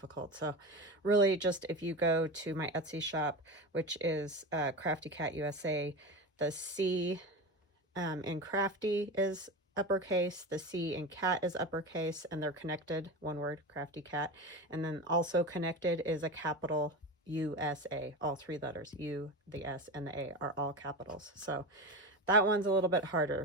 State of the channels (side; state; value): both; normal; correlation 0.24